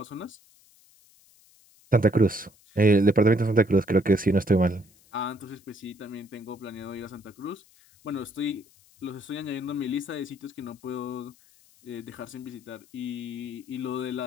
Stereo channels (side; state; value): left; noise; hiss, 29 dB below the sound